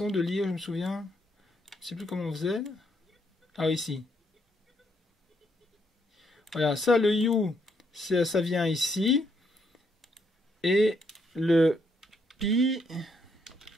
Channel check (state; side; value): normal; both; correlation 0.74